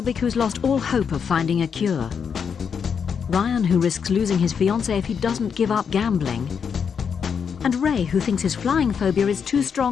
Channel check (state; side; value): quieter; right; 6.8 dB